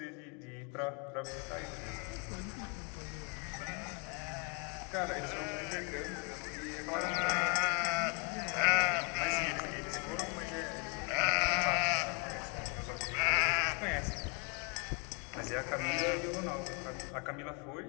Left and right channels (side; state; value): right; quieter; 34.0 dB